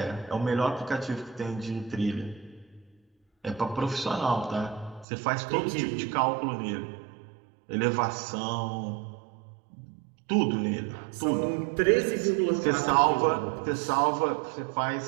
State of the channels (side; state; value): left; drops out; at 5.1 s